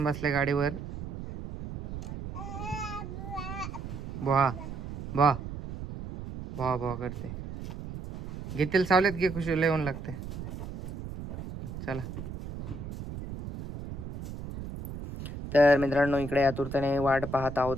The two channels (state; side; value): noise; right; rumble, 9 dB below the sound